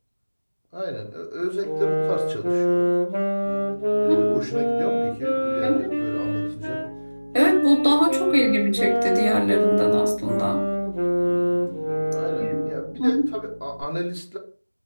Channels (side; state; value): both; inverted; correlation -1.00